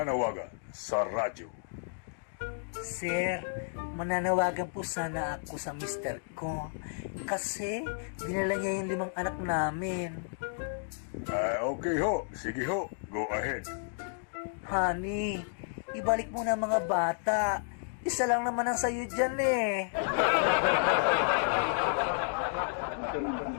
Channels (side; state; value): right; silent; digital silence